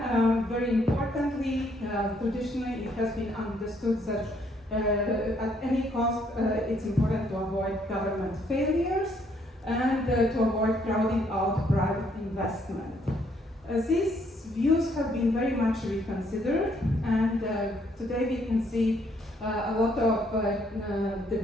very importantly, traditionally it has been understood that at any cost it's important to avoid government failures and to avoid crowding out private investment. These views have been very much reconsidered, and today we can see a lot of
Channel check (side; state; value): both; normal; correlation 0.69